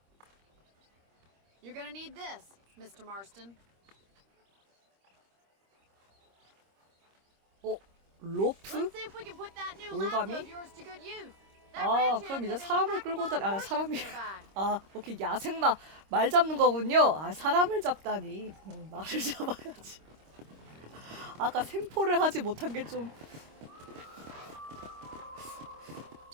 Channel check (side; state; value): left; late; 26 ms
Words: You're gonna need this, Mr. Marston. 어? 로프? Let's see if we can put that new 올가미? lasso of yours to good use. 아, 그럼 이제 사람을 끌고 다니, 사람이, 오케이, 야생마, 말 잡는 거군요. 사람을 잡다니. 말을 잡아야지. 아까 생포를 하지 못한 게 조금